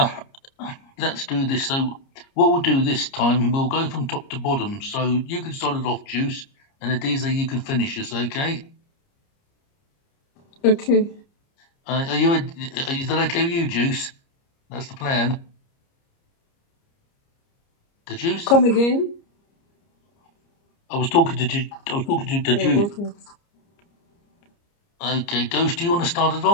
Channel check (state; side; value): late; right; 30 ms